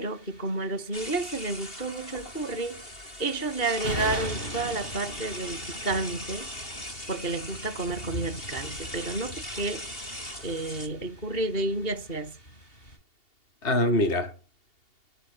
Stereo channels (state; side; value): late; right; 2.8 ms